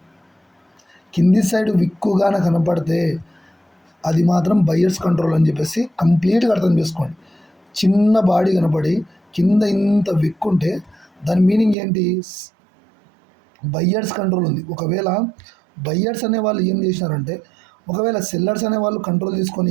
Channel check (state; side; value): drops out; left; at 11.8 s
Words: కింది సైడ్ విక్కుగాన కనపడితే అది మాత్రం బయ్యర్స్ కంట్రోల్ అని చెప్పేసి కంప్లీట్గా అర్థం చేసుకోండి. చిన్న బాడీ కనపడి కింద ఇంత విక్కుంటే దాని మీనింగ్ ఏంటి? బయ్యర్స్ కంట్రోల్ ఉంది. ఒకవేళ బయ్యర్స్ అనే వాళ్ళు ఏం చేసినారంటే, ఒకవేళ సెల్లర్స్ అనే వాళ్ళు కంట్రోల్ తీసుకొని